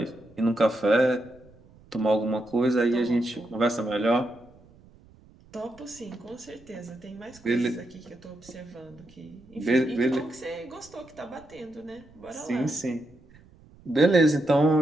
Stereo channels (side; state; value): right; noise; rumble, 26 dB below the sound